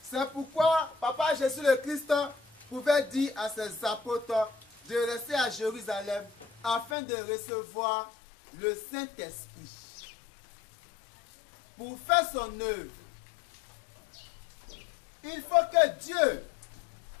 C'est pourquoi Papa Jésus le Christ pouvait dire à ses apôtres de rester à Jérusalem afin de recevoir le Saint-Esprit pour faire son œuvre. Il faut que Dieu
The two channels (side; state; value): right; drops out; at 7.0 s